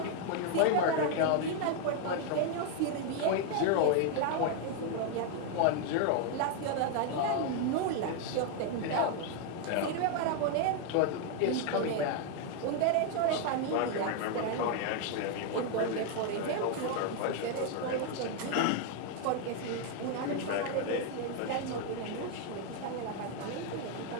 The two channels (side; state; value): both; different; correlation 0.00